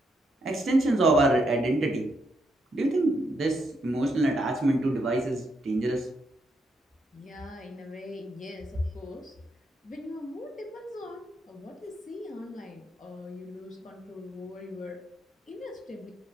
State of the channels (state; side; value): normal; both; correlation 0.79